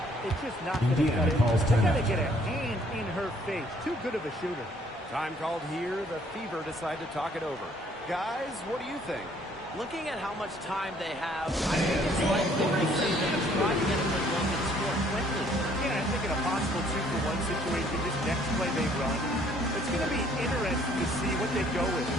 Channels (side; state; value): both; normal; correlation 0.62